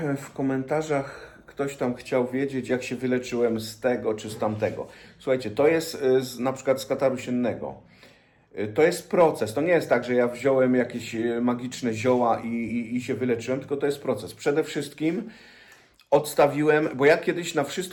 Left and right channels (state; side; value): identical; both; correlation 1.00